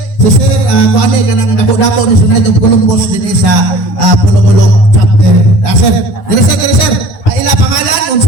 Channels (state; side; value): late; right; 9.8 ms